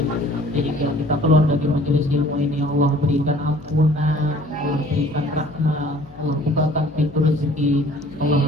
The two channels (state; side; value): noise; left; hum, 24 dB below the sound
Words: Jadi kita keluar dari majelis ilmu ini, Allah berikan ampunan, Allah berikan rahmat, Allah bukakan pintu rezeki, Allah